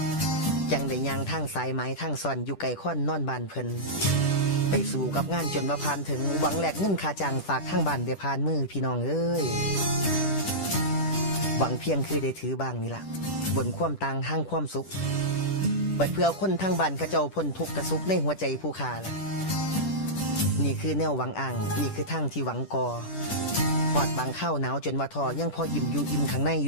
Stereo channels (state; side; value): late; right; 10 ms